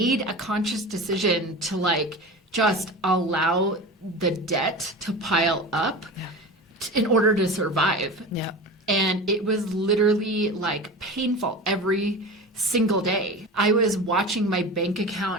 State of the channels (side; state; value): both; normal; correlation 0.31